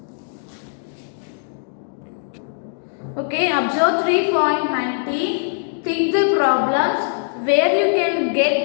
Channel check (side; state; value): right; silent; digital silence